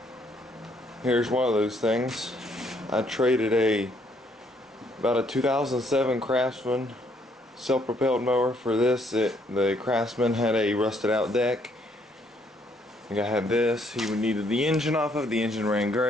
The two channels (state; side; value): normal; both; correlation 0.69